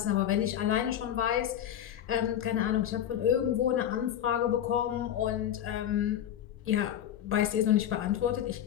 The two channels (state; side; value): quieter; right; 10.6 dB